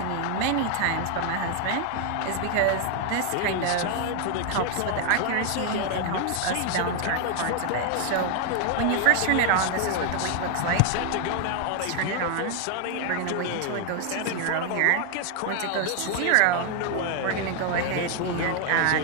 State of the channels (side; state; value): both; different; correlation 0.00